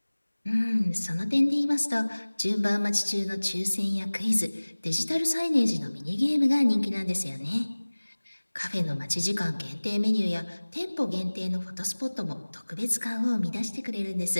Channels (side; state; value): both; inverted; correlation -1.00